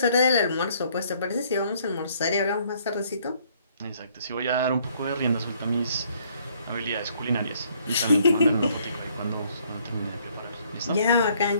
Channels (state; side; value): inverted; both; correlation -0.64